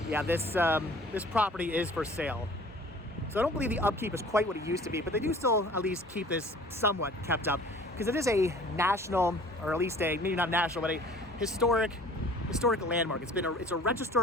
yeah, this property is for sale. So I don't believe the upkeep is quite what it used to be, but they do still at least keep this somewhat kept up, because it is a national, or at least maybe not national, but a historic landmark. It's a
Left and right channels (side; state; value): both; normal; correlation 0.49